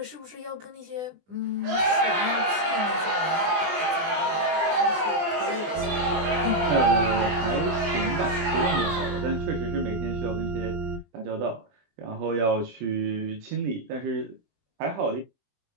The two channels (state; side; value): late; left; 20 ms